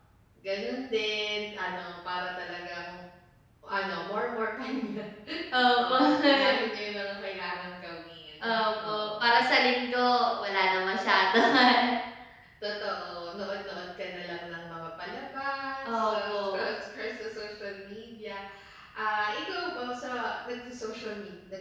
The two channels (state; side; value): identical; both; correlation 1.00